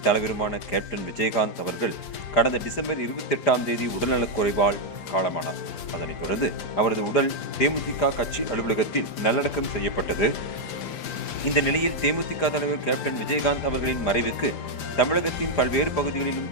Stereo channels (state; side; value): late; right; 4.9 ms